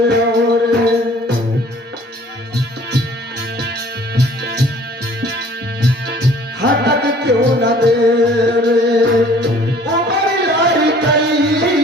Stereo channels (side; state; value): both; normal; correlation 0.53